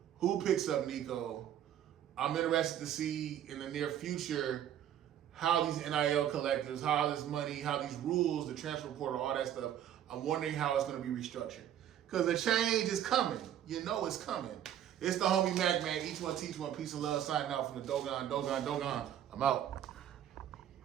who picks up Nico. I'm interested to see in the near future how these NIL collectives, how this money, how these rules, the transfer portal, all that stuff, I'm wondering how it's going to be restructured. Because the change is coming. You know it's coming. It's the homie MACK, man. Each one teach one. Peace and love. Signing out from the Dogon. I'm out.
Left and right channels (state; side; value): quieter; left; 10.7 dB